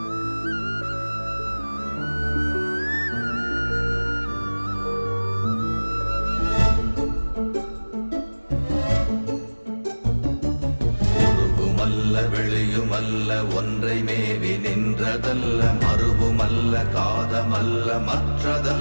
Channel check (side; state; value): both; inverted; correlation -1.00